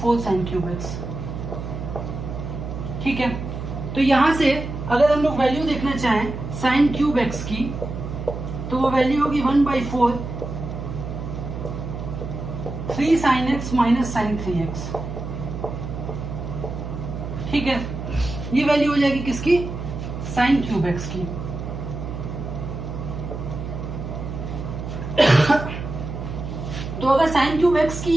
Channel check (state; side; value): noise; right; hum, 7 dB below the sound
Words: sin cube x। ठीक है, तो यहां से अगर हम लोग वैल्यू देखना चाहें साइन क्यूब x की, तो वो वैल्यू होगी 1/4 3 sin x - sin 3x। ठीक है, ये वैल्यू हो जाएगी किसकी, साइन क्यूब x की। तो अगर साइन क्यूब x की